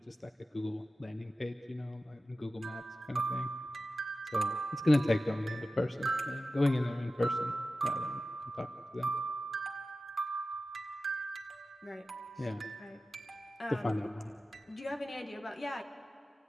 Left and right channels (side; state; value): both; normal; correlation 0.93